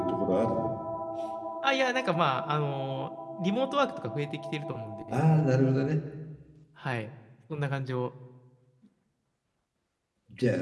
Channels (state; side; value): identical; both; correlation 1.00